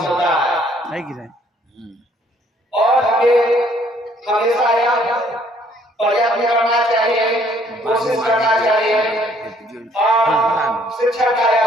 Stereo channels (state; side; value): normal; both; correlation 0.62